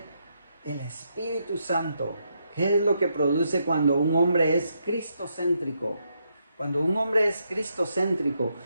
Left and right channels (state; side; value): inverted; both; correlation -0.79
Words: el Espíritu Santo? ¿Qué es lo que produce cuando un hombre es cristocéntrico? Cuando un hombre es cristocéntrico,